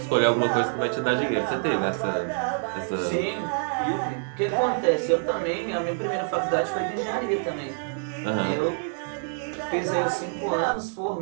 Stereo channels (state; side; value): silent; left; 61 dB below the other